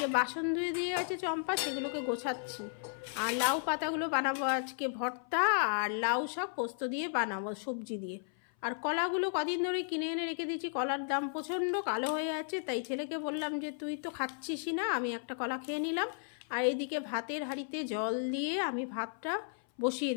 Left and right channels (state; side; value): silent; right; 55 dB below the other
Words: বাসন ধুয়ে দিয়ে আছে চম্পা, সেগুলোকে গোছাচ্ছি। আর লাউ পাতাগুলো বানাবো আজকে ভর্তা, আর লাউ শাক পোস্ত দিয়ে বানাবো সবজি দিয়ে। আর কলাগুলো কদিন ধরে কিনে এনে রেখে দিয়েছি, কলার দাম প্রচণ্ড কালো হয়ে আছে, তাই ছেলেকে বললাম যে তুই তো খাচ্ছিসই না, আমি একটা কলা খেয়ে নিলাম। আর এদিকে ভাতের হাঁড়িতে জল দিয়ে আমি ভাতটা বসিয়ে